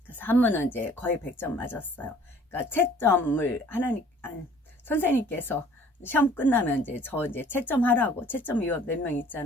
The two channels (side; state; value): both; normal; correlation 0.54